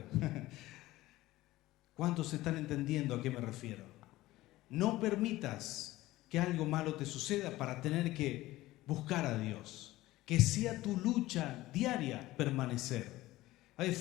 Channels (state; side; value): quieter; right; 17.3 dB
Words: ¿Cuántos están entendiendo a qué me refiero? No permitas que algo malo te suceda para tener que buscar a Dios. Que sea tu lucha diaria permanecer. Es